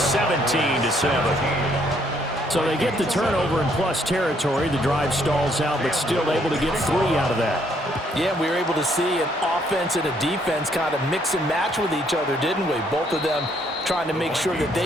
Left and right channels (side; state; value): both; normal; correlation 0.69